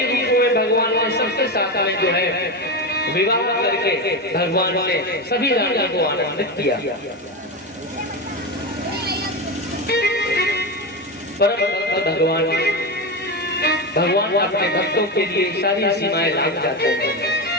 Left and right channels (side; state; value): both; normal; correlation 0.16